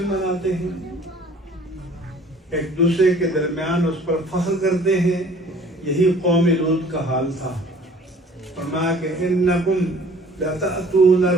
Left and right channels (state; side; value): normal; both; correlation 0.52